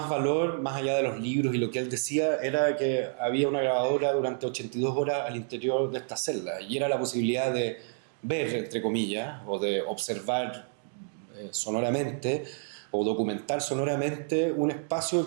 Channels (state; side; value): silent; left; digital silence